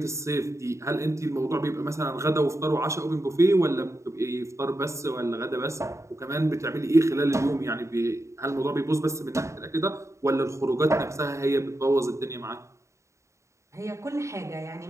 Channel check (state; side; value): late; left; 0.14 ms